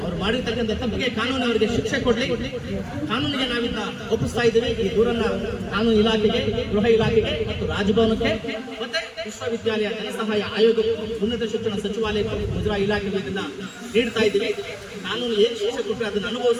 ಅವ್ರು ಮಾಡಿರ್ತಕ್ಕಂಥ ತಪ್ಪಿಗೆ ಕಾನೂನು ಅವರಿಗೆ ಶಿಕ್ಷೆ ಕೊಡ್ಲಿ. ಕಾನೂನಿಗೆ ನಾವಿಂದ ಒಪ್ಪಿಸ್ತಾ ಇದ್ದೀವಿ. ಈ ದೂರನ್ನ ಕಾನೂನು ಇಲಾಖೆಗೆ, ಗೃಹ ಇಲಾಖೆಗೆ ಮತ್ತು ರಾಜಭವನಕ್ಕೆ ಮತ್ತೆ ವಿಶ್ವವಿದ್ಯಾಲಯ ಧನಸಹಾಯ ಆಯೋಗ, ಉನ್ನತ ಶಿಕ್ಷಣ ಸಚಿವಾಲಯಕ್ಕೆ, ಮುಜರಾಯಿ ಇಲಾಖೆಗೆ ಇದನ್ನ ನೀಡ್ತಾ ಇದ್ದೀವಿ. ಕಾನೂನು ಏನು ಶಿಕ್ಷೆ ಕೊಟ್ಟರೆ ಅದನ್ನು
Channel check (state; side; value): identical; both; correlation 1.00